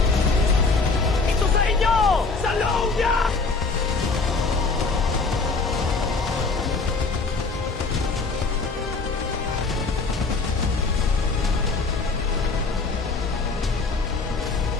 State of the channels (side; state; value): right; quieter; 4.1 dB